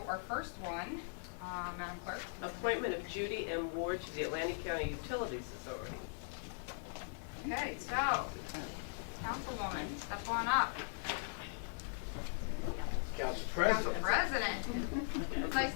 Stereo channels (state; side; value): silent; right; digital silence